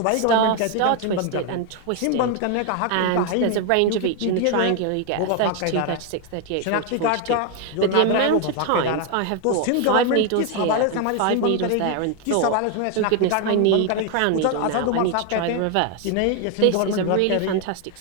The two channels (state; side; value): different; both; correlation 0.01